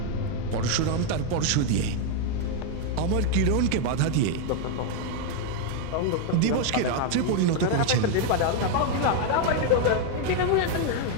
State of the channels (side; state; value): both; different; correlation 0.01